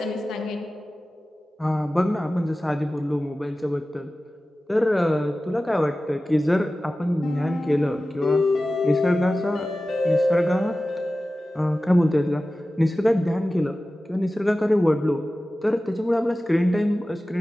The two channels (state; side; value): normal; both; correlation 0.96